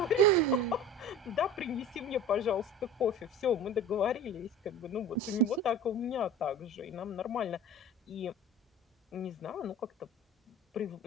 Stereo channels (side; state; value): both; normal; correlation 0.37